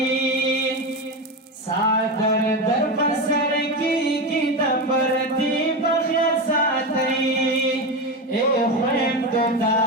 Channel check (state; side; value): normal; both; correlation 0.17